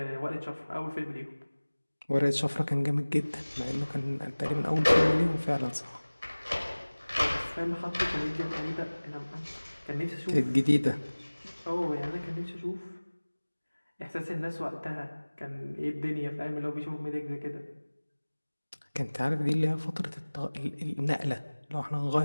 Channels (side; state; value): both; inverted; correlation -1.00